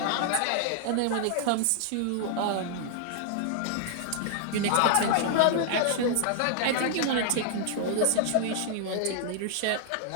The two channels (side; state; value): both; different; correlation 0.00